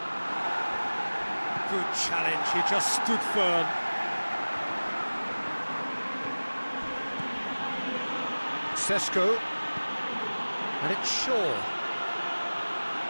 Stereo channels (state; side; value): inverted; both; correlation -1.00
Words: Good challenge, he just stood firm. Sesko. And it's Shaw.